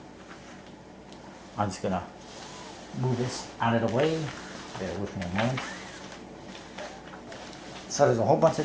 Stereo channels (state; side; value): identical; both; correlation 1.00